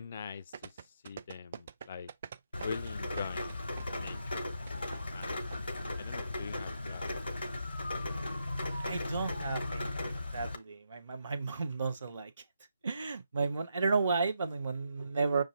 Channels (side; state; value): both; inverted; correlation -0.82